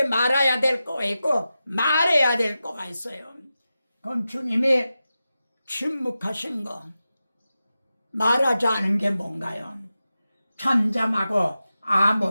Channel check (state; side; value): inverted; both; correlation -0.92